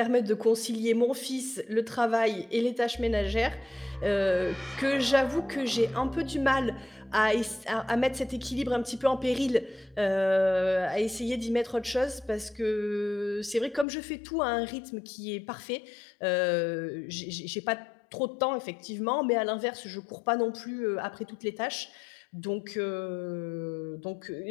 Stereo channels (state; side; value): drops out; right; at 13.9 s